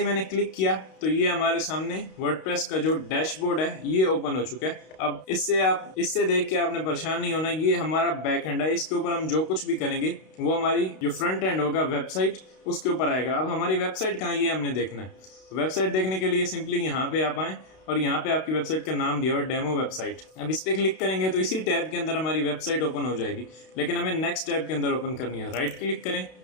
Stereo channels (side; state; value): right; late; 32 ms